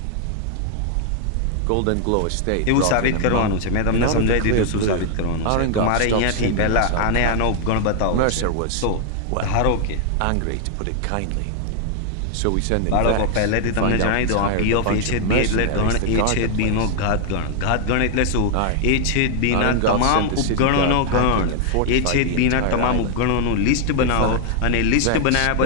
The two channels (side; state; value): both; different; correlation 0.00